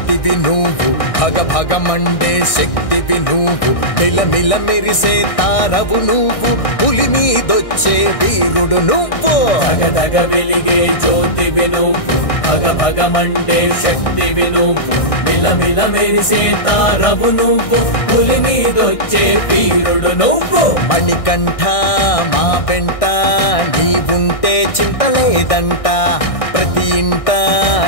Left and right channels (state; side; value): late; right; 1.6 ms